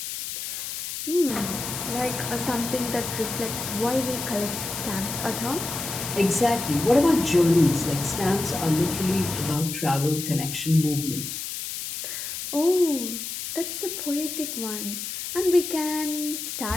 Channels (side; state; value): left; noise; hiss, 6 dB below the sound